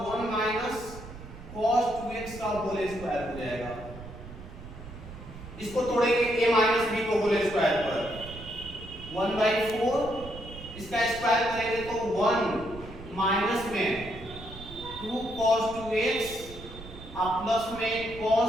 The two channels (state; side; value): noise; right; rumble, 14 dB below the sound